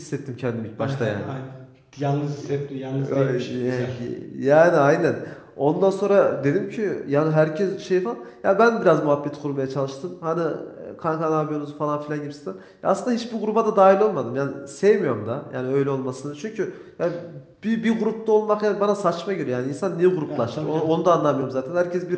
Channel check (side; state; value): both; identical; correlation 1.00